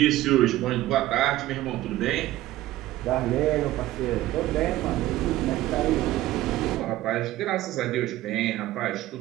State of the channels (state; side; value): quieter; left; 15.6 dB